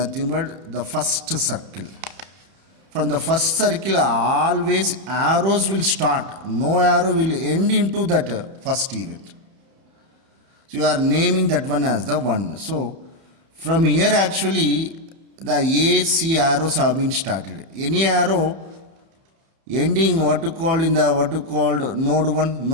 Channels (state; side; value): late; left; 31 ms